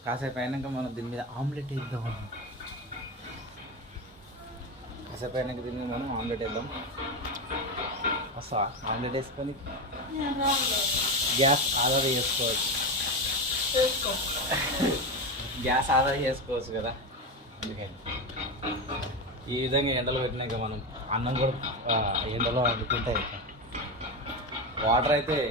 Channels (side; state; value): both; normal; correlation 0.16